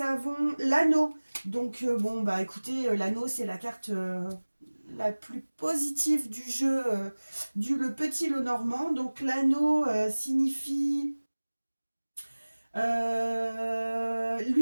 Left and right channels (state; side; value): inverted; both; correlation -1.00